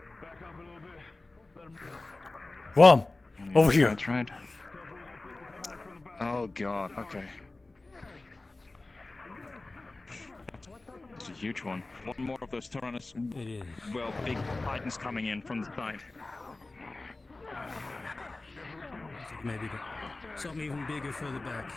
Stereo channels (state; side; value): quieter; right; 3.1 dB